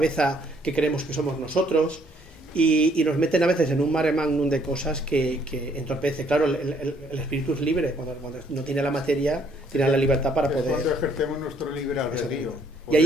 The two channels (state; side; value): normal; both; correlation 0.65